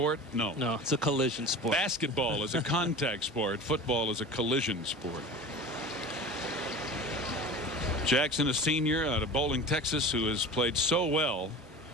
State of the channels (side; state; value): both; normal; correlation 0.35